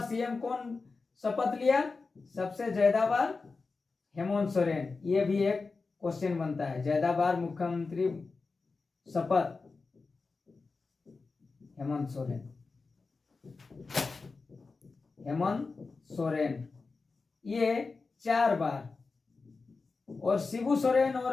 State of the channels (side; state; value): right; quieter; 4.2 dB